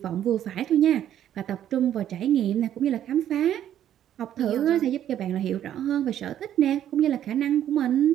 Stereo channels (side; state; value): left; quieter; 10.9 dB